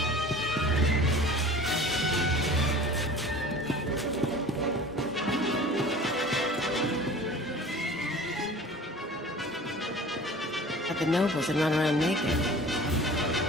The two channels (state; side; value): normal; both; correlation 0.42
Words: But the nobles had run around naked.